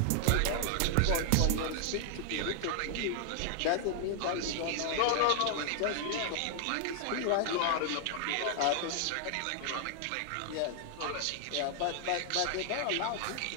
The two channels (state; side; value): different; both; correlation 0.00